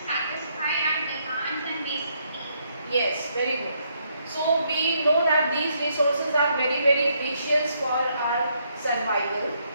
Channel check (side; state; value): both; inverted; correlation -0.74